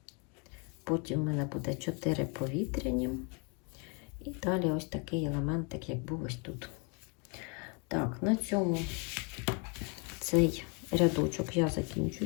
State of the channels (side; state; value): right; quieter; 34.3 dB